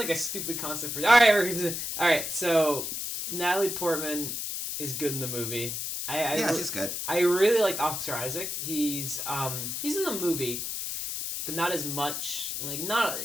a stupid concept for. All right. So Natalie Portman is good in the movie. She's good. I really liked Oscar Isaac. He's in the movie, but not as much.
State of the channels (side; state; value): left; noise; hiss, 4 dB below the sound